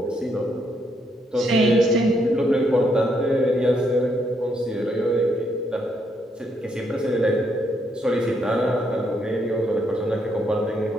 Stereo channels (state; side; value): normal; both; correlation 0.75